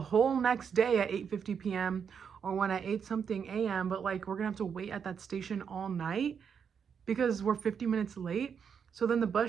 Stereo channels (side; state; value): left; quieter; 7.0 dB